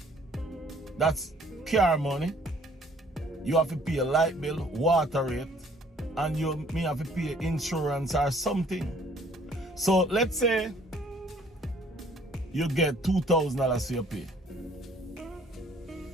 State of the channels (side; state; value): both; normal; correlation 0.59